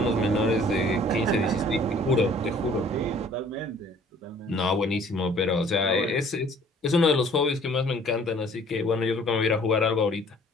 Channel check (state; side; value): normal; both; correlation 0.55